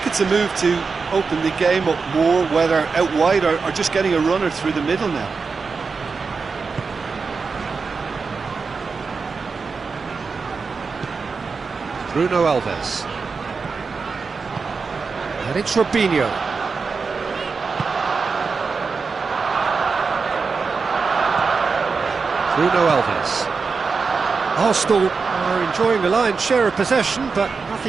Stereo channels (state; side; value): quieter; left; 4.8 dB